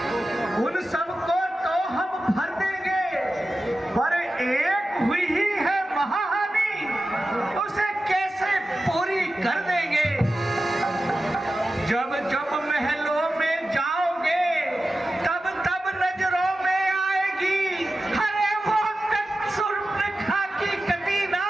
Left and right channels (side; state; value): both; normal; correlation 0.93